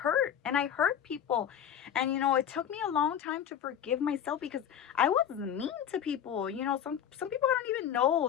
and I hurt people. And it took me a long time to forgive myself because I was mean to people. Some people I don't even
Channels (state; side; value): quieter; right; 9.3 dB